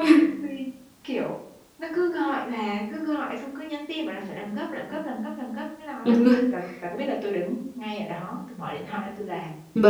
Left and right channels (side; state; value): both; identical; correlation 1.00